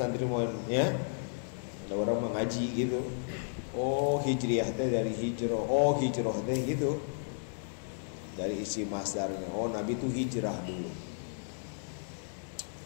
mau ya. Ada orang mengaji gitu. Oh, hijriyah teh dari hijrah. Oh, hijrah teh gitu. Dari isi masdarnya. Oh, Nabi itu hijrah dulu.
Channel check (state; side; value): silent; right; digital silence